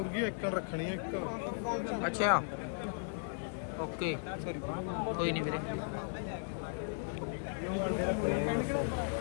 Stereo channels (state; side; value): silent; right; 54 dB below the other